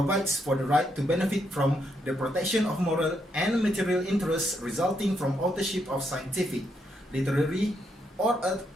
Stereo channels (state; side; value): normal; both; correlation 0.78